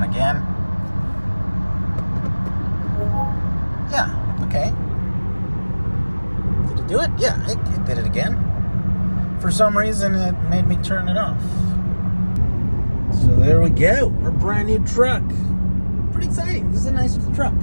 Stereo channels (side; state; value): both; inverted; correlation -1.00